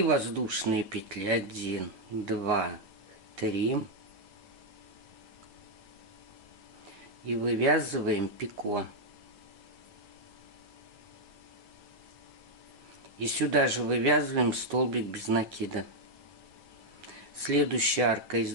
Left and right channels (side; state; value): left; late; 9.3 ms